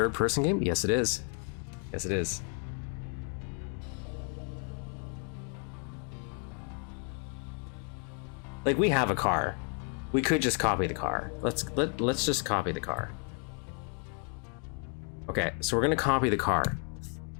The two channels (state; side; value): quieter; right; 39.8 dB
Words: game? Yes, it is. Yes, it is. Like, we have a car. We could just copy the car. Let's just copy the car. Okay, so we're gonna copy the car.